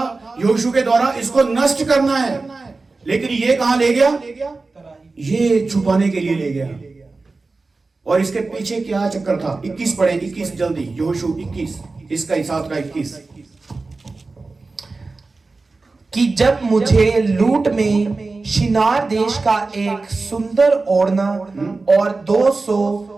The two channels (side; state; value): left; quieter; 3.7 dB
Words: यहोशू के द्वारा, इसको नष्ट करना है, लेकिन ये कहां ले गया? ये छुपाने के लिए ले गया। और इसके पीछे क्या चक्कर था? 21 पढ़े, 21 जल्दी, यहोशू 21, इसका हिसाब का 21। कि जब मुझे लूट में शिनार देश का एक सुंदर ओढ़ना और 200